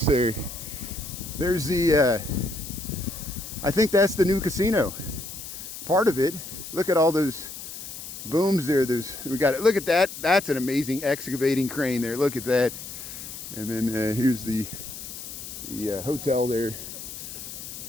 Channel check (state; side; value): noise; left; hiss, 10 dB below the sound